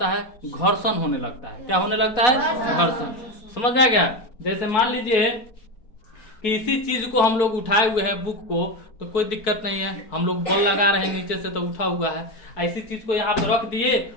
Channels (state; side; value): late; right; 4.3 ms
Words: है? घर्षण होने लगता है। क्या होने लगता है? घर्षण। समझ में आ गया? जैसे मान लीजिए किसी चीज को हम लोग उठाए हुए हैं बुक को तो कोई दिक्कत नहीं है, हम लोग बॉल लगा रहे हैं नीचे से तो उठा हुआ है। ऐसी चीज को यहाँ पे रख दिए